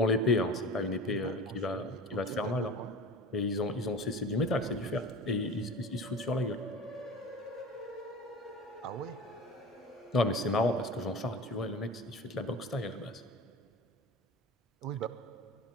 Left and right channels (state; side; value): normal; both; correlation 0.34